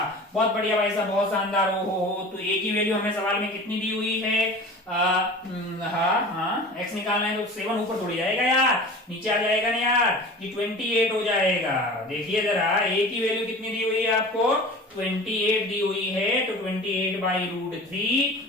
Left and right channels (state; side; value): normal; both; correlation 0.38